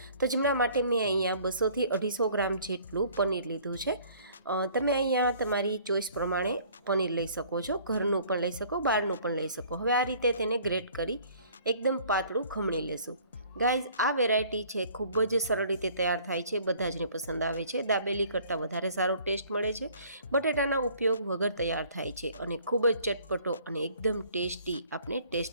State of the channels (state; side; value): inverted; both; correlation -0.55